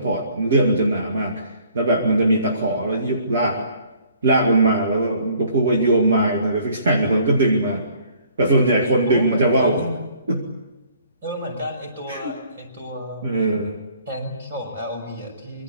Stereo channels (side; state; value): both; inverted; correlation -0.59